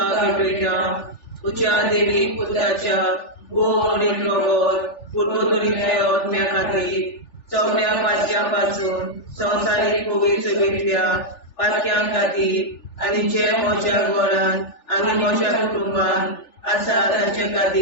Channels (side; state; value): right; late; 3.4 ms